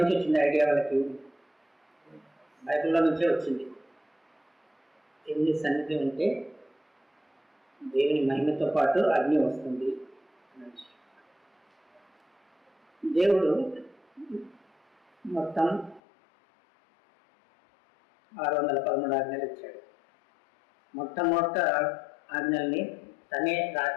వచ్చింది ఐడియా వాళ్ళకి? బైబిల్లో నుంచే వచ్చింది. దేవుని సన్నిధి ఉంటే దేవుని మహిమతో పాటు అగ్ని వస్తుంది. దేవుడు మొత్తం 613 ఆజ్ఞలు ఇచ్చాడు. మొట్టమొదట ఆజ్ఞల్ని తనే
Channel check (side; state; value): right; drops out; at 16.0 s